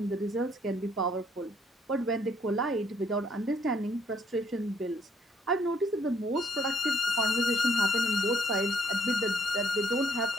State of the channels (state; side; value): normal; both; correlation 0.66